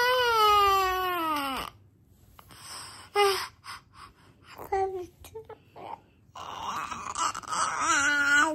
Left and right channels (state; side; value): identical; both; correlation 1.00